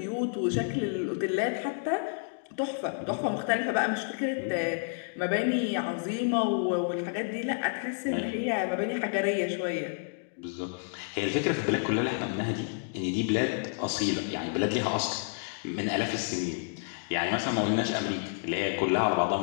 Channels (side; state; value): right; silent; digital silence